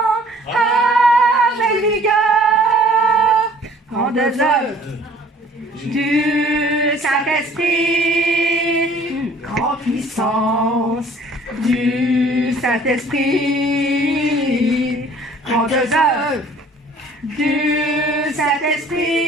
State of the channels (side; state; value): both; normal; correlation 0.53